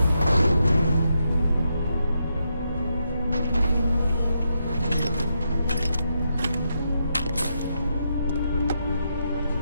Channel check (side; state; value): both; inverted; correlation -0.82